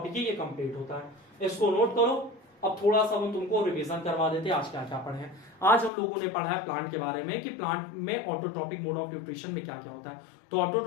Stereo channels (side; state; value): right; drops out; at 5.9 s